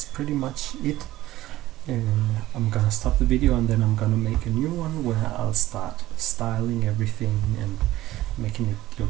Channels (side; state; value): left; quieter; 15.8 dB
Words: pretty much it. I'm gonna stop the video and then I'm gonna make a new one where I'll start styling everything and making it